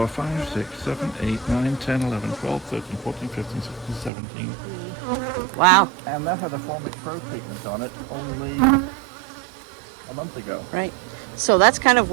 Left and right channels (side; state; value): left; drops out; at 4.1 s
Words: 5, 6, 7, 8, 9, 10, 11, 12, 13, 14, 15, 16, 17. Wow. And that had a Formic Pro treatment on it only a month ago. Right. So that's kind of